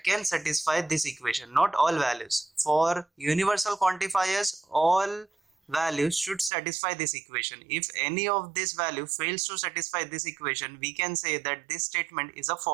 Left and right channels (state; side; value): drops out; left; at 6.5 s